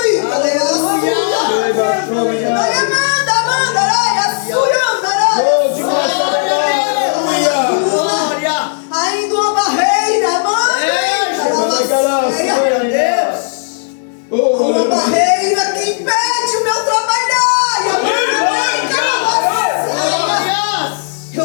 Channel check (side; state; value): right; silent; digital silence